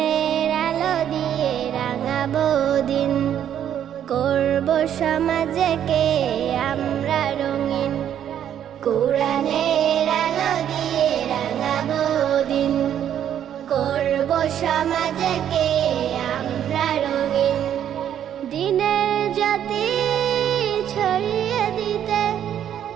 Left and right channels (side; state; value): left; quieter; 10.0 dB